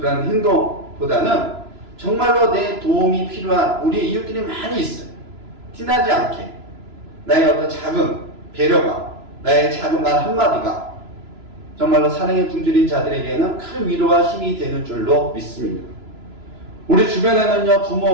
행동보다는 정말로 내 도움이 필요한 우리 이웃들이 많이 있어요. 티나지 않게 나의 어떤 작은 배려가, 나의 작은 말 한마디가 정말로 사랑에 굶주린 자들에게는 큰 위로와 힘이 되는 줄로 믿습니다. 우리 주변에는요, 부모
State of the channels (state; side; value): late; left; 3.0 ms